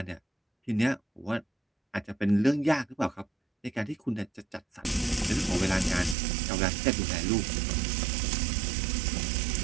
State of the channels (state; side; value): drops out; left; at 6.2 s